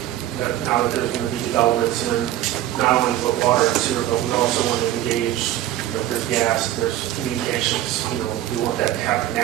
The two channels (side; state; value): left; quieter; 13.4 dB